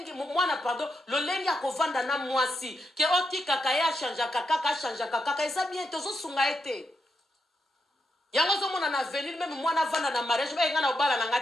mwana pardon lolengi akovanda na mwasi ke otika kaya chanja kaka eza bien tozo sunga ete yango zo mona na avenir même mwana vanda na mariage ba ngana obala na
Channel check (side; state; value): both; normal; correlation 0.82